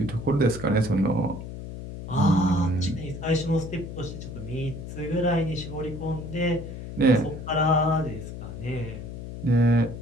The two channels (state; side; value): noise; left; hum, 9 dB below the sound